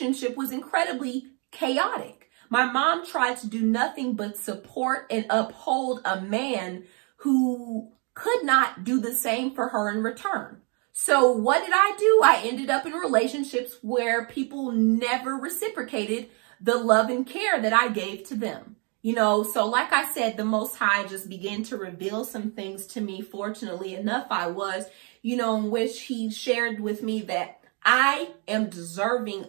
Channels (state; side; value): quieter; left; 35.5 dB